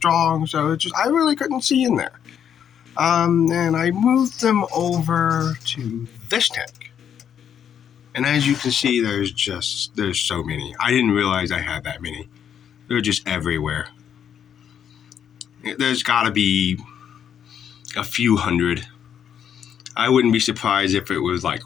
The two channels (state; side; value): quieter; right; 8.7 dB